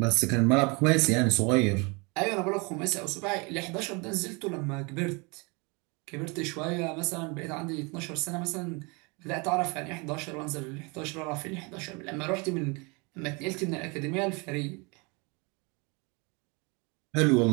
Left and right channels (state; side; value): quieter; left; 29.5 dB